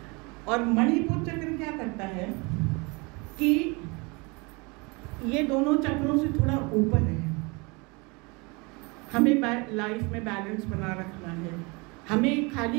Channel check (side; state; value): left; quieter; 28.2 dB